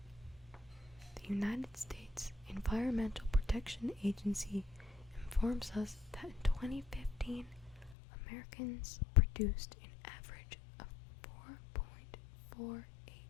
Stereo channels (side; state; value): right; drops out; at 8.0 s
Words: The United States Environmental Protection Agency informs us that in 2015, Americans produced an average of 4.48